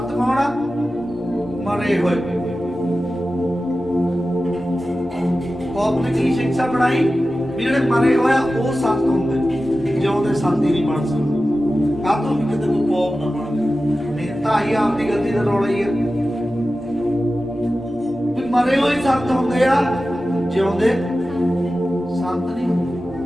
ਕੌਣ ਆ? ਮਰੇ ਹੋਏ। ਪੋਪ ਨੇ ਕੀ ਸਿੱਖਿਆ ਬਣਾਈ ਵੀ ਜਿਹੜੇ ਮਰੇ ਹੋਇਆ ਉਹ ਸੰਤ ਹੁੰਦੇ, ਜਿਉਂਦੇ ਸੰਤ ਹੀ ਨਹੀਂ ਬਣ ਸਕਦੇ। ਕਾਹਤੋਂ ਵੀ ਕਿਤੇ ਕੋਈ ਪੋਪ ਨਾ ਬਣ ਜਾਏ, ਤਾਂ ਹੀ ਆਪਦੀ ਗਲਤੀ ਦਾ ਰੌਲਾ ਹੀ ਹੈ ਵੀ ਮਰੇ ਹੋਏ ਸੰਤ ਹੁੰਦੇ ਆ, ਜਿਉਂਦੇ ਸੰਤ ਨਹੀਂ ਹੁੰਦੇ।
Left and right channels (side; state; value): both; normal; correlation 0.94